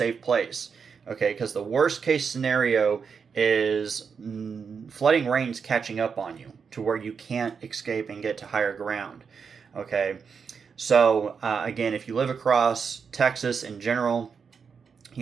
place. Okay, because the worst case scenario is flooding rains catching up on you to where you can't escape and get to higher ground. Okay, so again, if you live across Texas in general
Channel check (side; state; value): left; quieter; 6.1 dB